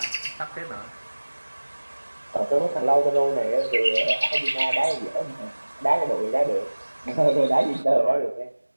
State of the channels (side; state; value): both; inverted; correlation -1.00